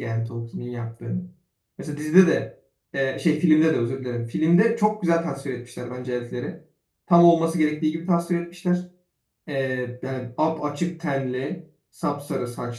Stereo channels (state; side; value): identical; both; correlation 1.00